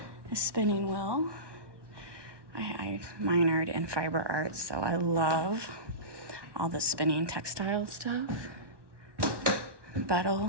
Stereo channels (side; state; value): left; late; 1.1 ms